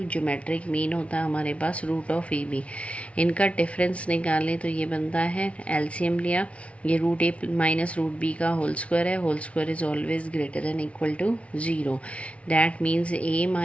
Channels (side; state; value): right; late; 0.063 ms